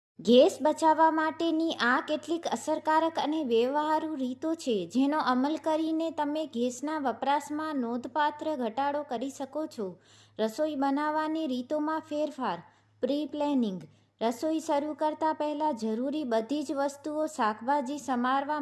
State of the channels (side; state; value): both; identical; correlation 1.00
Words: Gas બચાવવા માટેની આ કેટલીક અસરકારક અને વ્યવહારુ રીતો છે જેનો અમલ કરીને તમે ગેસના વપરાશમાં નોંધપાત્ર ઘટાડો કરી શકો છો. રસોઈ બનાવવાની રીતોમાં ફેરફાર. Pre planning. રસોઈ શરૂ કરતા પહેલાં જરૂરી બધી જ વસ્તુઓ, શાકભાજી